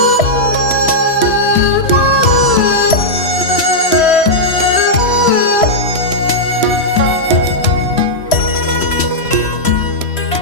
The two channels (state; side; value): late; right; 3.0 ms